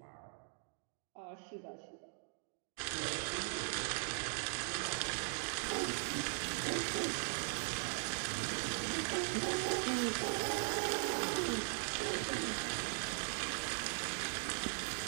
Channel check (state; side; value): silent; left; 51 dB below the other